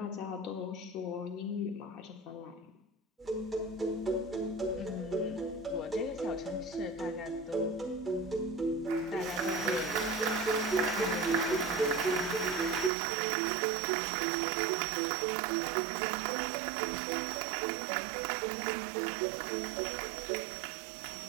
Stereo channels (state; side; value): drops out; left; at 12.9 s